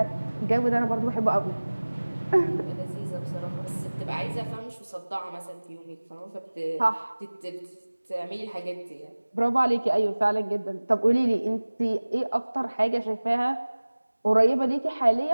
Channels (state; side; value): inverted; both; correlation -1.00